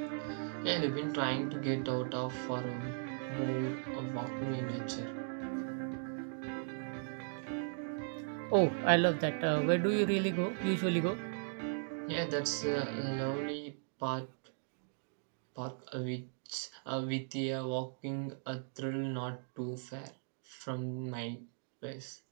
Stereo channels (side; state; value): left; silent; digital silence